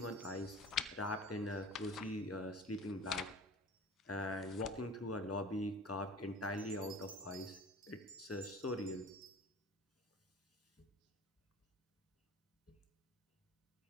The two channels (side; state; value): both; normal; correlation 0.41